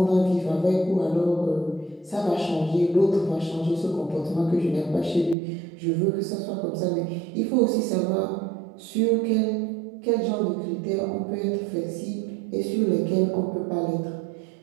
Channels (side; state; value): left; drops out; at 5.4 s